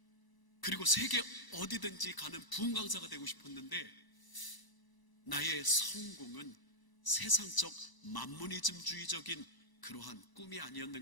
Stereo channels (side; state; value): right; late; 1.0 ms